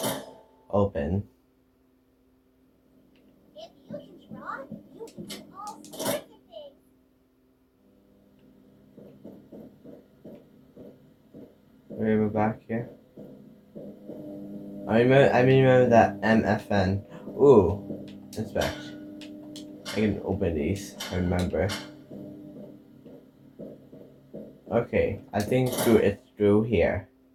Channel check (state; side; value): identical; both; correlation 1.00